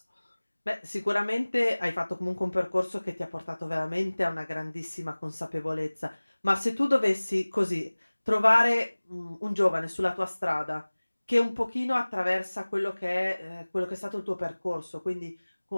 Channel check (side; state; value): both; inverted; correlation -1.00